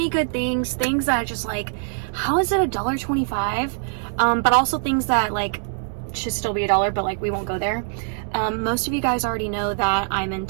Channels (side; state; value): left; silent; digital silence